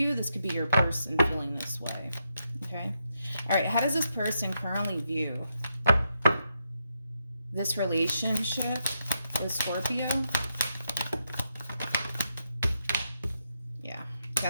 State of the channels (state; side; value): inverted; both; correlation -0.82